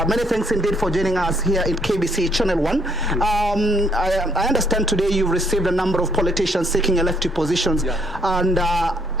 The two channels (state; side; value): normal; both; correlation 0.68